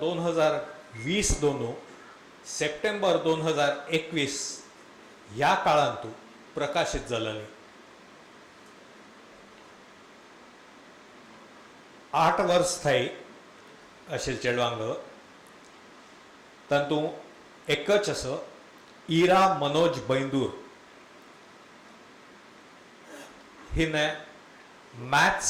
2020 दोन सप्टेंबर 2021 ह्या काळांत प्रकाशित जालेली 8 वर्स थाई अशेल चेडवांग तातूं एकच असो इरा मनोज बैंदूर हिने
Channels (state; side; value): identical; both; correlation 1.00